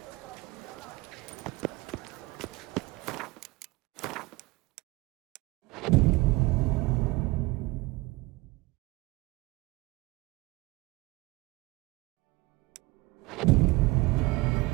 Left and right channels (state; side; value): quieter; left; 22.0 dB